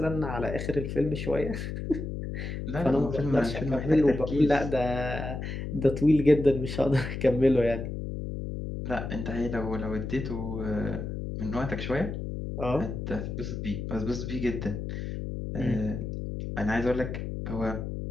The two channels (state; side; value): noise; left; hum, 5 dB below the sound